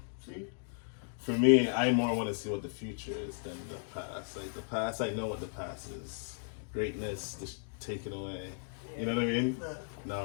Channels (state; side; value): silent; right; digital silence